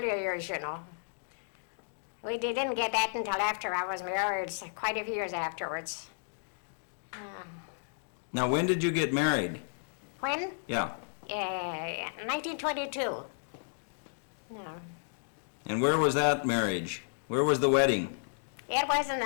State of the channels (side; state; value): right; silent; digital silence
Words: years, you know. We didn't get that until after I was married, so quite a few years afterwards. Now, when did you get married? When? Yeah. 1922. Yeah. And where was that marriage? Where was the wedding? It was in